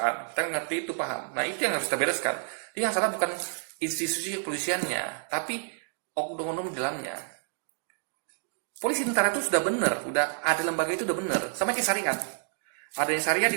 Kita ngerti itu, paham. Nah itu yang harus kita bereskan. Jadi yang salah bukan institusi kepolisiannya, tapi oknum-oknum di dalamnya. Polisi tentara itu sudah benar, udah ada lembaga itu udah benar, sama kayak syariat. Adanya syariat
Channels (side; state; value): left; silent; digital silence